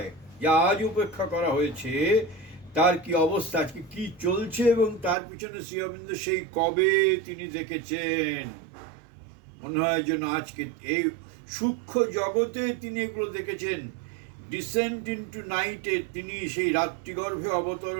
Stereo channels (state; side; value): drops out; left; at 5.2 s